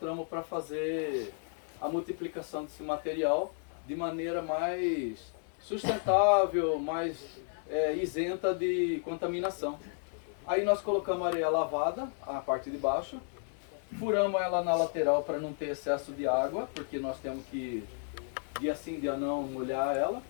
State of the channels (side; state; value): right; silent; 56 dB below the other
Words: para fazer a multiplicação desse material de maneira mais sustentável, mais isenta de contaminação. Aí nós colocamos areia lavada, a parte de baixo, furamos ela na lateral para não ter excesso de água, porque nós temos que, dia sim, dia não, molhar ela.